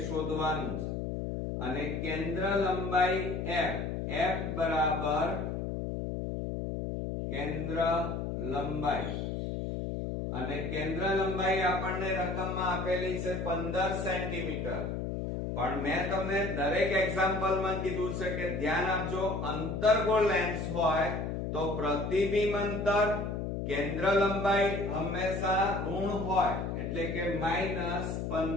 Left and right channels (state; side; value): noise; left; hum, 3 dB below the sound